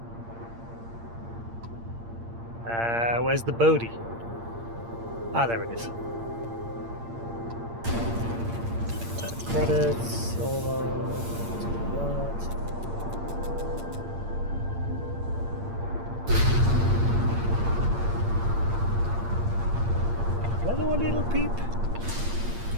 Where's the Bodhi? Ah, there it is. Credits, solo. Hello, little peep.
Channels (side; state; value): left; late; 8.7 ms